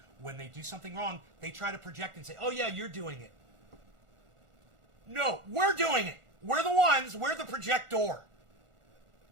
When they do something wrong, they try to project and say, oh yeah, you're doing it. No, we're doing it. We're the projector.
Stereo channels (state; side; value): late; left; 1.4 ms